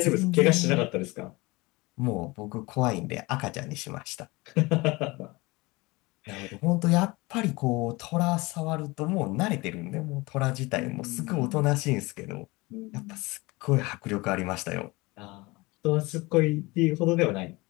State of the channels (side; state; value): right; quieter; 23.3 dB